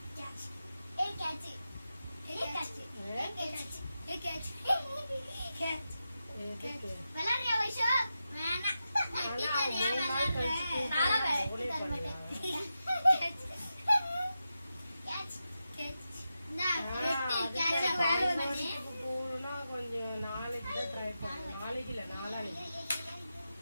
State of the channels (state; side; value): inverted; both; correlation -0.90